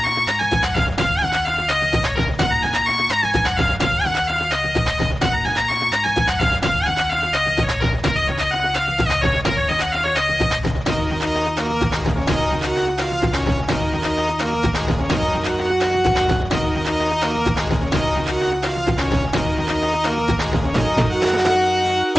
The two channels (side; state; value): both; normal; correlation 0.94